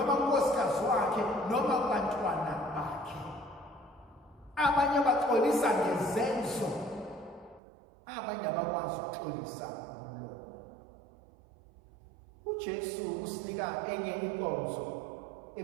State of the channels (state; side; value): drops out; left; at 7.6 s